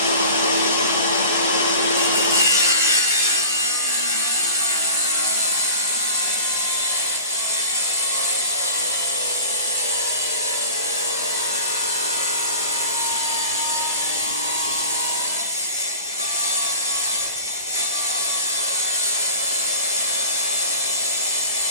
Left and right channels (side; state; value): both; inverted; correlation -0.39